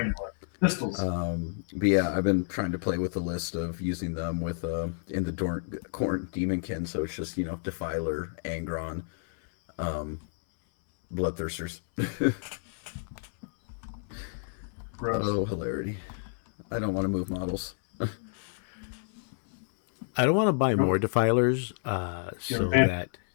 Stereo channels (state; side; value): silent; right; 58 dB below the other